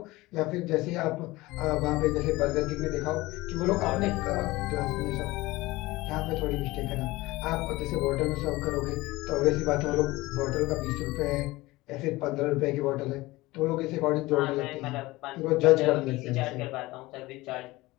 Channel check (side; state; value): right; quieter; 20.0 dB